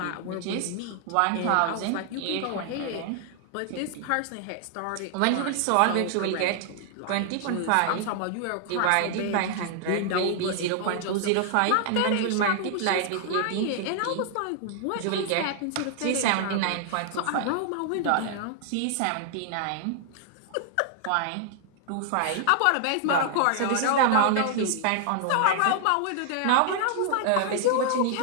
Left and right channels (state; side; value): different; both; correlation 0.00